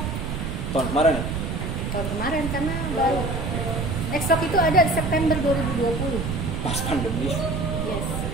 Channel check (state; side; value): noise; right; rumble, 3 dB below the sound